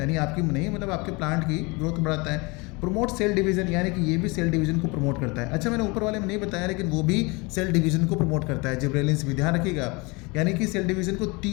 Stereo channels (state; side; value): quieter; right; 27.0 dB